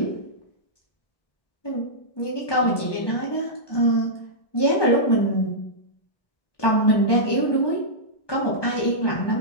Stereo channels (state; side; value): late; right; 1.2 ms